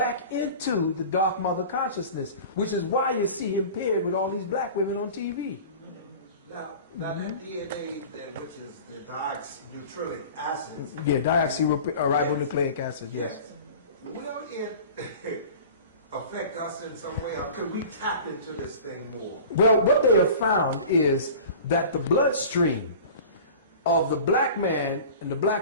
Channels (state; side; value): inverted; both; correlation -0.39